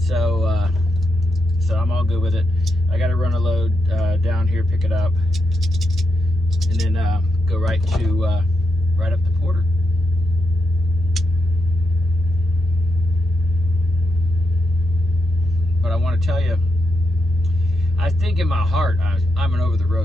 so I'm all good with it. I got to run a load down here, pick it up, and then go right up to Porter. But I want to tell you, I think in my heart I'm an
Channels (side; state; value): both; normal; correlation 0.84